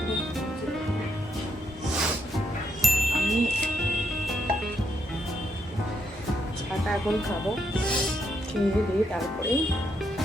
আমি চাটা এখন খাবো, খেয়ে দিয়ে তারপরে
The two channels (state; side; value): normal; both; correlation 0.78